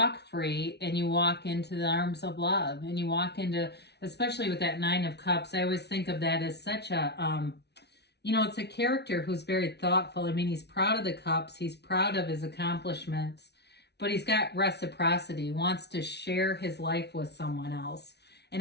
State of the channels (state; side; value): late; right; 0.49 ms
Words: free and you walk into the arms of love, and you walk into, especially with that Nine of Cups, I always think of that as such a, you know, it's a character who's very thoughtful. I mean, he's proud of the cups, he's proud of his accomplishments, but he's got reciprocity, wants to share his life with someone else. And